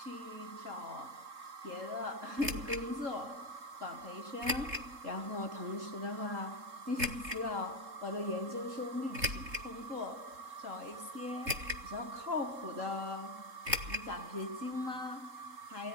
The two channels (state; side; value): late; left; 3.7 ms